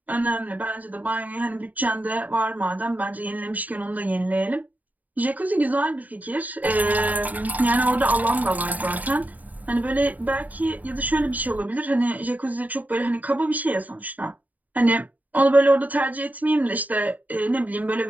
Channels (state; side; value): late; left; 0.078 ms